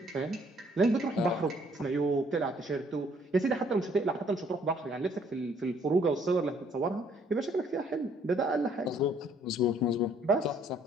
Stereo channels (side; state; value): both; normal; correlation 0.63